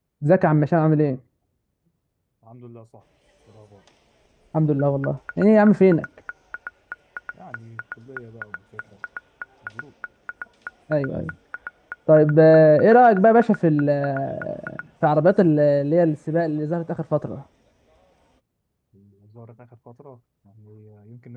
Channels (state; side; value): identical; both; correlation 1.00